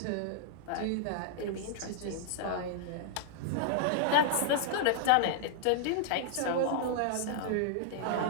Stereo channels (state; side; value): different; both; correlation -0.01